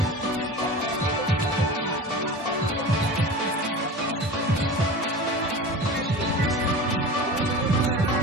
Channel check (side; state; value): both; normal; correlation 0.34